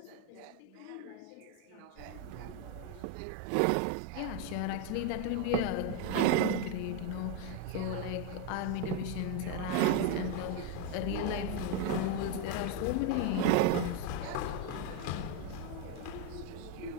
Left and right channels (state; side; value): different; both; correlation 0.01